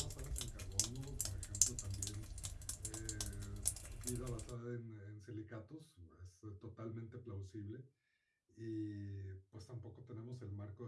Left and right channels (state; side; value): identical; both; correlation 1.00